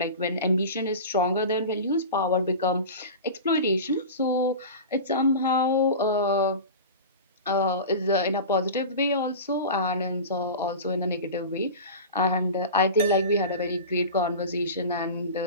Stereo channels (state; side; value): inverted; both; correlation -0.31